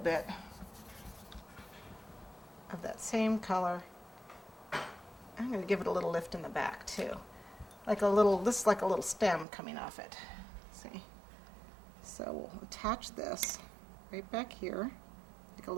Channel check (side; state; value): left; drops out; at 9.5 s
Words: of that same color. I'm going to give it a little lift in the back too. This is like a little stem coming off it. See? So we'll attach this right back here, like a